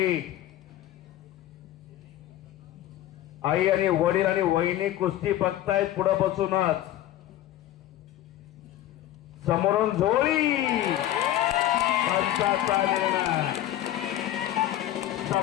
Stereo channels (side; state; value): right; quieter; 13.4 dB